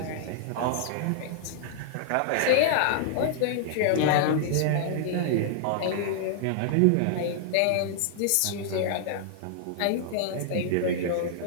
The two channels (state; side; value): different; both; correlation -0.01